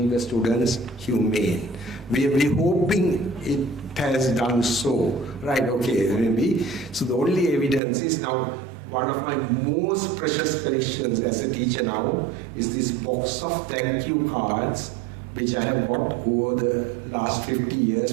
the students humane. We are hoping it has done so. Right, okay, maybe. So the only evidence is now, one of my most precious collections as a teacher now is this box of thank you cards, which I have got over the last 50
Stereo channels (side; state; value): left; drops out; at 7.8 s